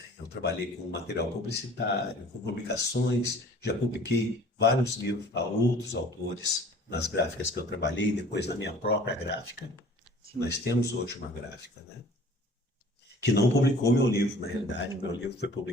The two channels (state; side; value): normal; both; correlation 0.49